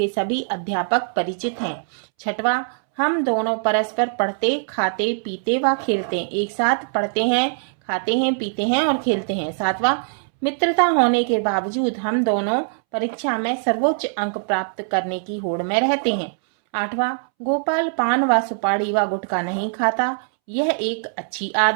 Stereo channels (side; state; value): left; silent; 64 dB below the other